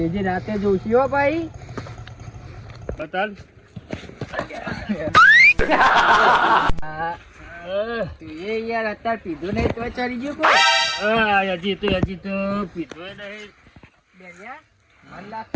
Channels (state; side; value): identical; both; correlation 1.00